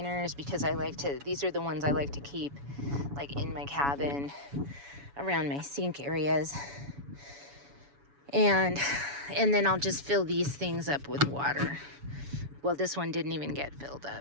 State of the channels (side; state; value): left; late; 7.1 ms